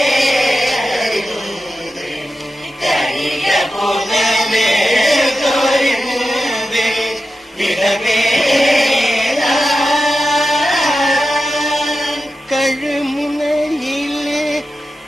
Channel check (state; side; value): normal; both; correlation 0.91